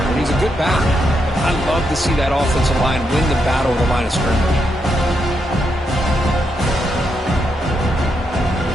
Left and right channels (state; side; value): normal; both; correlation 0.81